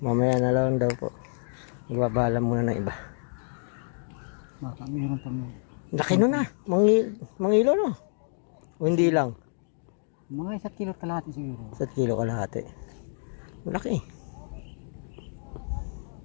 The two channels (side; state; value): right; silent; 59 dB below the other